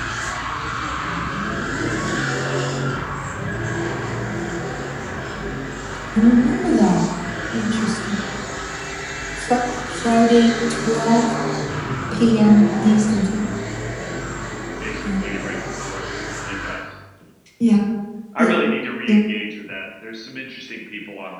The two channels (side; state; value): both; identical; correlation 1.00